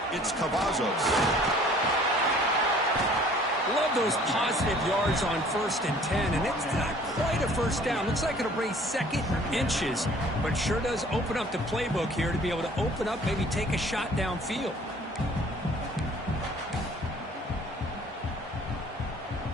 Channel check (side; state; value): both; normal; correlation 0.53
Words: it's Cavazos. Love those positive yards on 1st and 10, and it's not quite a first down. Looks like it'll bring 2nd inches, but sure does open up the playbook here to be able to open up, maybe take a shot downfield.